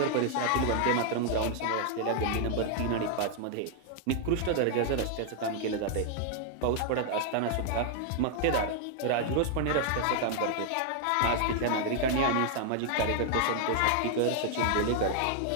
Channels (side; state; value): both; different; correlation 0.00